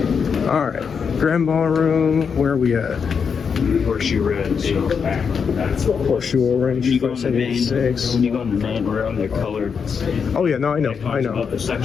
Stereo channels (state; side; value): quieter; right; 6.3 dB